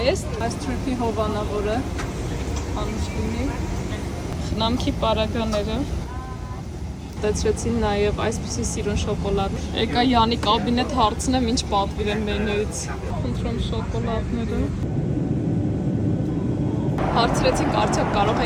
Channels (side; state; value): both; identical; correlation 1.00